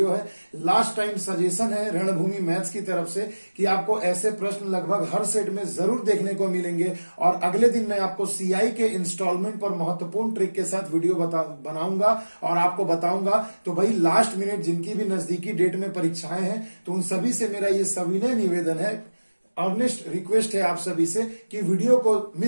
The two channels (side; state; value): both; inverted; correlation -1.00